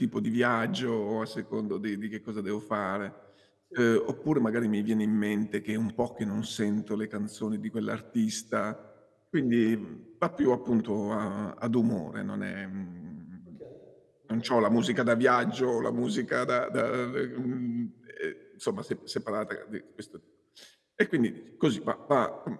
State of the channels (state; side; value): identical; both; correlation 1.00